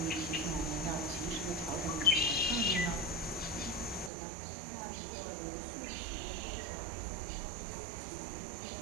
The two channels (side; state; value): left; drops out; at 4.1 s